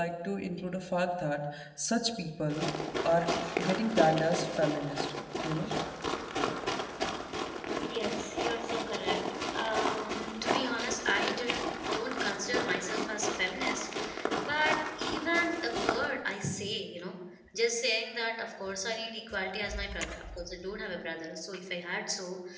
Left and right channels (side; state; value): both; identical; correlation 1.00